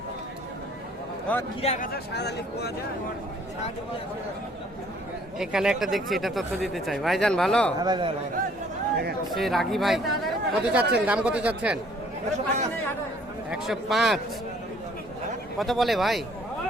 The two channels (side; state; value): both; normal; correlation 0.60